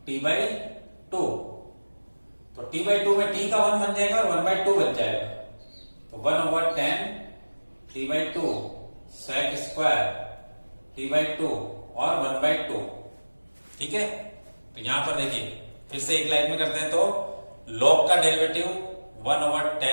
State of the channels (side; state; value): both; inverted; correlation -1.00